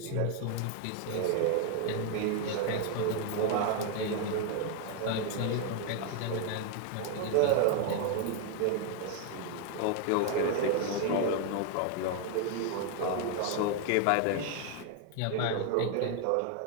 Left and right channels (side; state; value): both; different; correlation 0.00